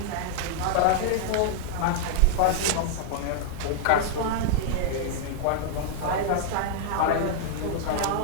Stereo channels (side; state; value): both; different; correlation -0.01